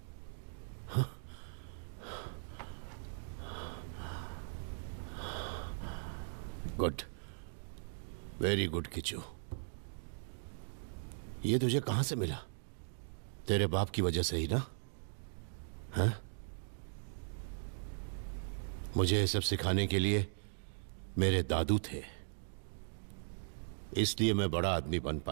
Good, very good Kishu. ये तुझे कहां से मिला? तेरे बाप की वजह से ही ना? हाँ? मुझे ये सब सिखाने के लिए मेरे दादू थे, इसलिए मैं बड़ा आदमी बन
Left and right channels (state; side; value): silent; left; digital silence